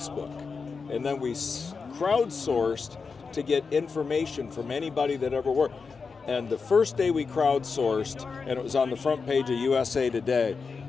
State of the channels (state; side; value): quieter; right; 5.0 dB